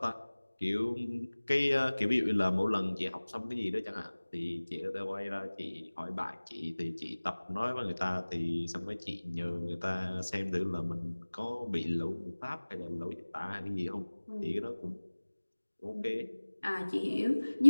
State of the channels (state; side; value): inverted; both; correlation -1.00